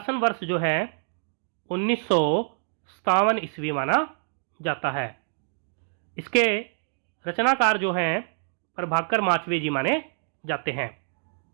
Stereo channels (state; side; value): silent; left; digital silence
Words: वर्ष जो है 1957 ईस्वी माना जाता है। इसके रचनाकार जो हैं प्रभाकर माचवे जी माने जाते हैं।